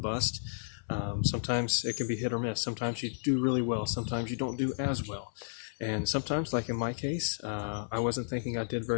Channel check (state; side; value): silent; right; 56 dB below the other